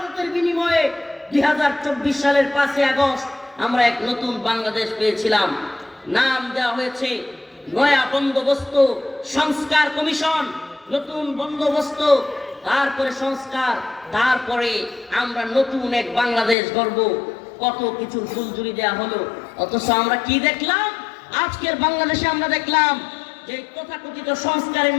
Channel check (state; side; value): drops out; right; at 16.6 s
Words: বিনিময়ে 2024 সালের 5 আগস্ট আমরা এক নতুন বাংলাদেশ পেয়েছিলাম। নাম দেওয়া হয়েছে নয়া বন্দোবস্ত সংস্কার কমিশন। নতুন বন্দোবস্ত, তারপরে সংস্কার, তারপরে আমরা নতুন এক বাংলাদেশ গড়ব। কত কিছুর ফুলঝুরি দেওয়া হলো, অথচ আমরা কি দেখলাম? আজকের বাংলাদেশে আমরা দেখলাম যে তথাকথিত সংস্কারের